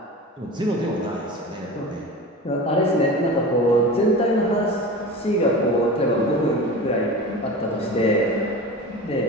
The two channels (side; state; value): both; normal; correlation 0.32